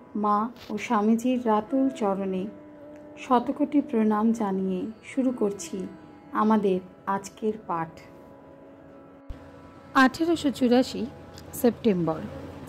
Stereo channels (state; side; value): identical; both; correlation 1.00